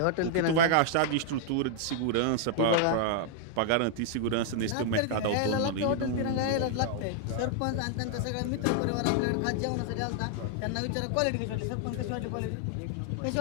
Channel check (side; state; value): both; different; correlation 0.00